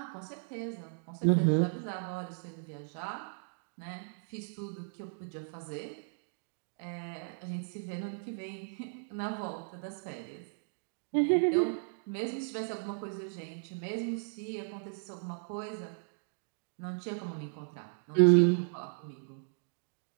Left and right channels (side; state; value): left; silent; digital silence